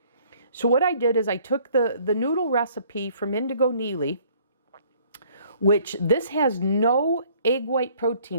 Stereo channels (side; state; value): both; inverted; correlation -0.59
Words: So what I did is I took the noodle recipe from Indigo Neely, which this has no egg white